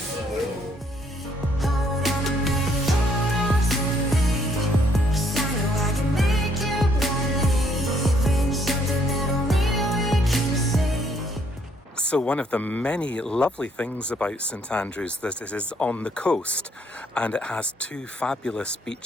So one of the many lovely things about St Andrews that it is on the coast, and it has two fabulous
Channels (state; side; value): normal; both; correlation 0.67